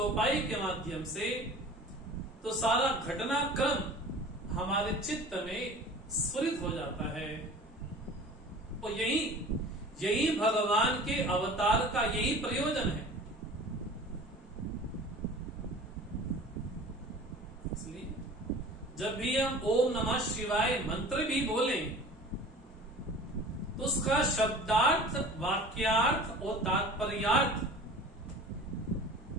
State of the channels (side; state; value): both; normal; correlation 0.41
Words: के माध्यम से, तो सारा घटनाक्रम हमारे चित्त में स्फुरित हो जाता है। और यही भगवान के अवतार का यही प्रयोजन है। इसलिए जब भी हम ओम नमः शिवाय मंत्र भी बोलें तो उसका शब्दार्थ, वाक्यार्थ और तात्पर्यार्थ